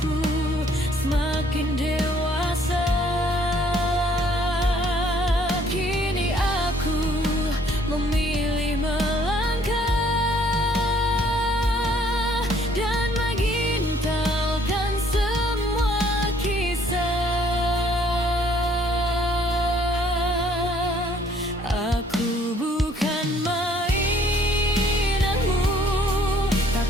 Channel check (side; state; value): both; normal; correlation 0.62